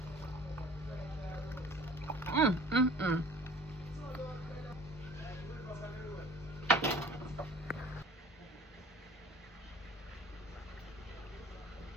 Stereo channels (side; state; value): both; normal; correlation 0.46